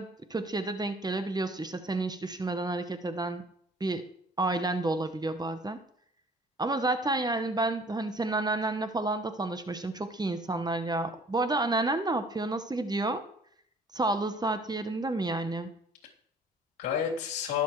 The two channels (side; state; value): both; normal; correlation 0.53